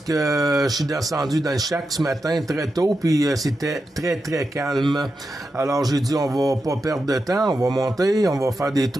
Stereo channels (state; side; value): normal; both; correlation 0.89